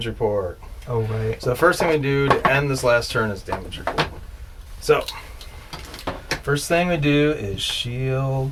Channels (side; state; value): both; identical; correlation 1.00